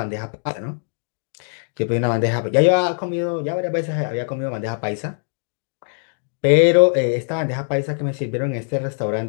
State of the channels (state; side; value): silent; right; digital silence